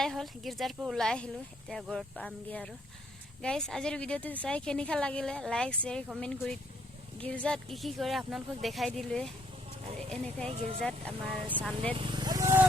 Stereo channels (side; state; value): both; normal; correlation 0.69